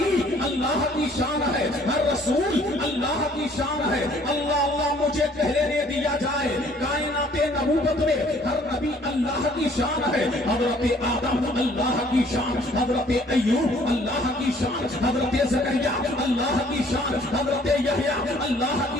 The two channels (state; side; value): normal; both; correlation 0.58